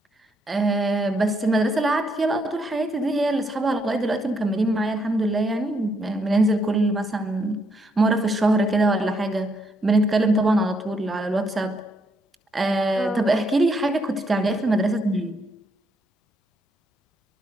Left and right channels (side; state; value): both; normal; correlation 0.75